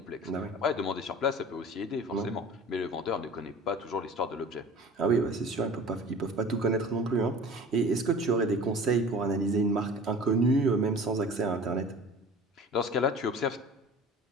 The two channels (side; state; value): both; normal; correlation 0.42